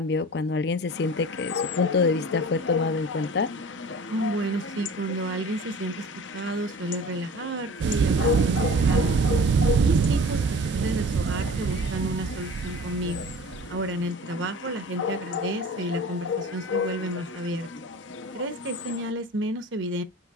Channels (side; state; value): both; normal; correlation 0.40